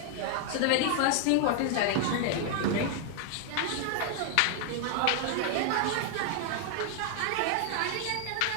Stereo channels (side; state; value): both; different; correlation 0.00